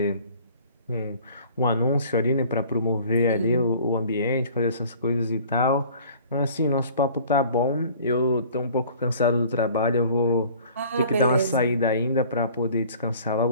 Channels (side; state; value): both; inverted; correlation -0.50